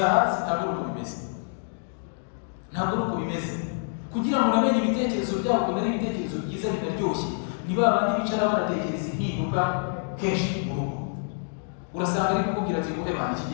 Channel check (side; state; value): right; silent; 60 dB below the other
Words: hasi. Ntabwo ari uko bimeze, ntabwo ari uko bimeze. Kugira ngo unamenye ibitekerezo byabo, kumenya ibitekerezo byiza binaryoshye, ni ba bandi bicara banatekereza impinduka kenshi mu rugo. Urasanga ari kukubwira ati ngo ebana iki